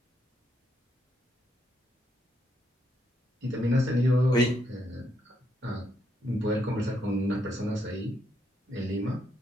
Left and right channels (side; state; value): both; normal; correlation 0.77